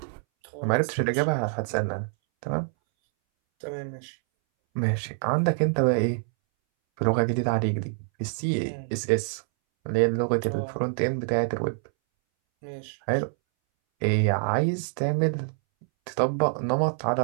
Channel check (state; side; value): silent; left; 61 dB below the other